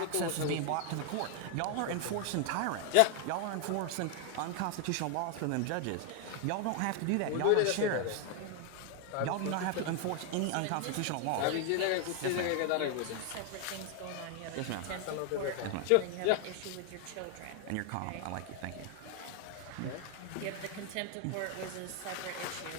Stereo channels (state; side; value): different; both; correlation 0.00